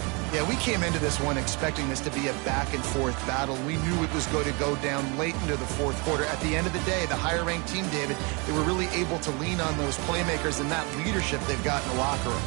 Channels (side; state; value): left; quieter; 30.4 dB